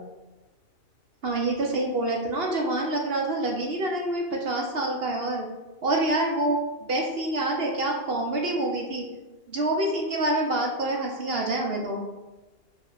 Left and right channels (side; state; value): left; late; 2.8 ms